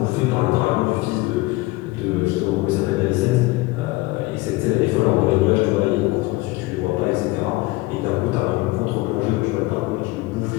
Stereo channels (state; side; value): quieter; right; 20.6 dB